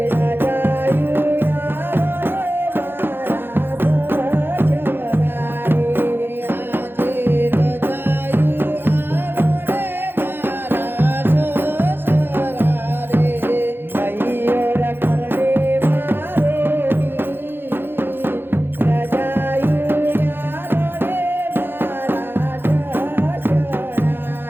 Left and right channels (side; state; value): left; late; 0.10 ms